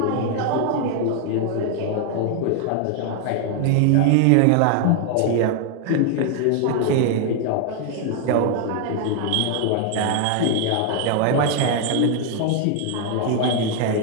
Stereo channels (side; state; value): both; different; correlation 0.00